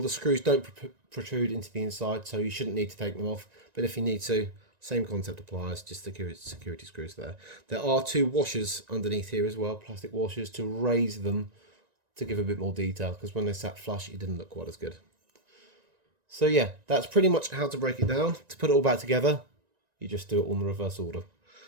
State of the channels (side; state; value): left; late; 1.9 ms